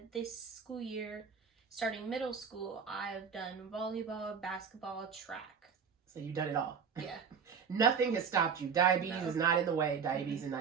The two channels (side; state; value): left; quieter; 6.5 dB